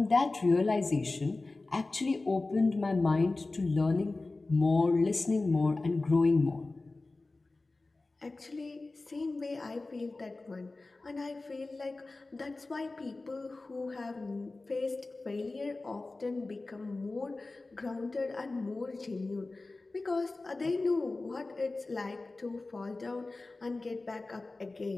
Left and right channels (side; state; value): right; quieter; 3.3 dB